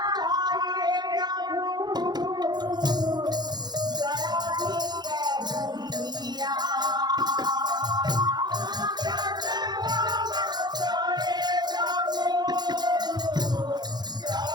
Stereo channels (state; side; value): late; left; 0.20 ms